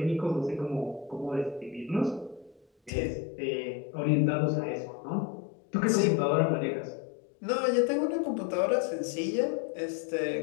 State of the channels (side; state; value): right; drops out; at 2.9 s